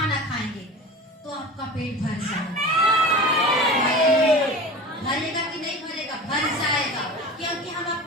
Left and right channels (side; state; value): both; normal; correlation 0.34